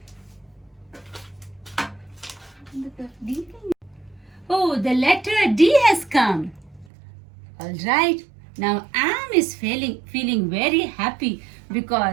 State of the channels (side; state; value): left; drops out; at 6.9 s